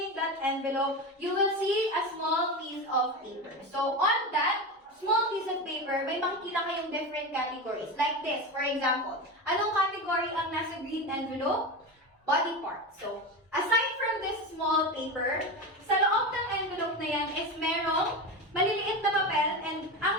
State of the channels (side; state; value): both; normal; correlation 0.22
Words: that envelope, you will see a small piece of paper. So on that small piece of paper, may makikita kayong different categories. Like this, for example. Anong category ang nasa green envelope? Body part. So, aside from this small paper, sa loob ng envelope na yan is merong maliliit na papel, and ang